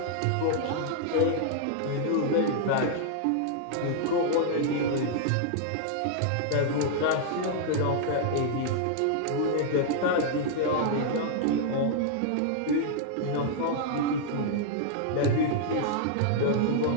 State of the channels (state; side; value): different; both; correlation -0.01